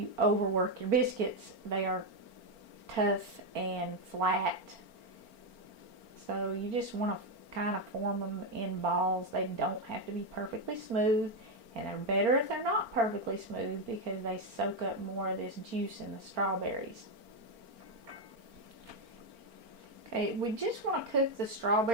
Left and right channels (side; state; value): left; late; 4.4 ms